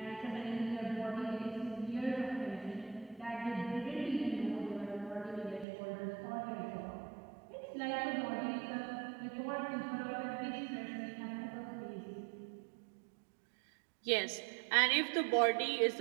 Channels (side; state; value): left; drops out; at 5.7 s